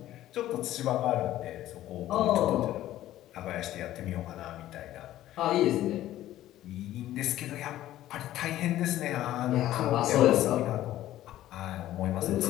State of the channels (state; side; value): quieter; right; 13.8 dB